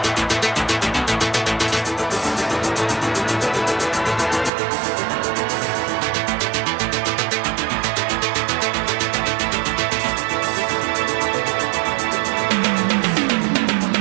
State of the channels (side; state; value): left; drops out; at 4.5 s